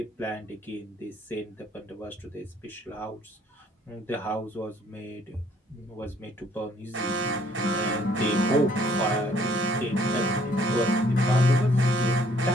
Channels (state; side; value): normal; both; correlation 0.63